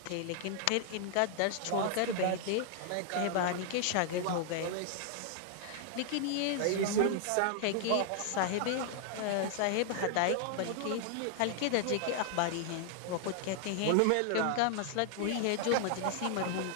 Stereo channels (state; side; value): different; both; correlation 0.00